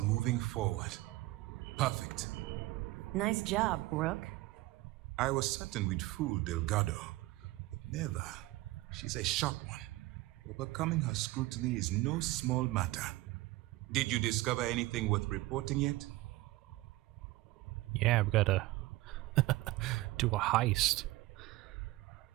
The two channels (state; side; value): quieter; left; 19.0 dB